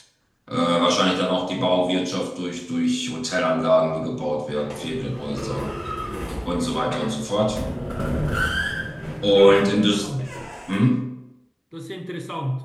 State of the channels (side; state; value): both; identical; correlation 1.00